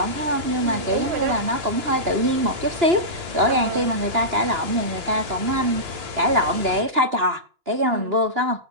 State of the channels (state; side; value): late; left; 2.9 ms